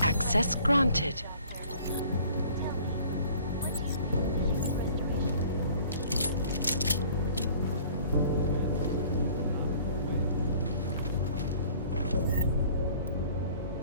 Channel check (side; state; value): both; inverted; correlation -0.52